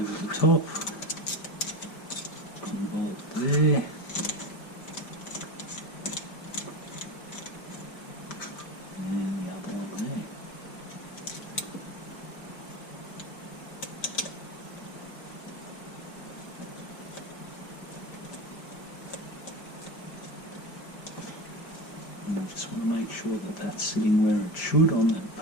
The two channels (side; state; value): right; late; 5.0 ms